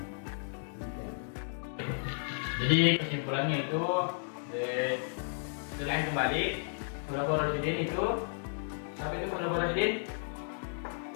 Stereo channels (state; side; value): silent; right; digital silence